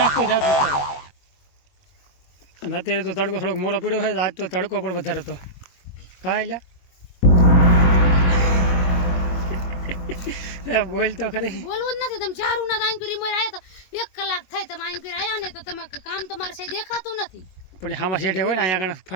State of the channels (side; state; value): right; late; 21 ms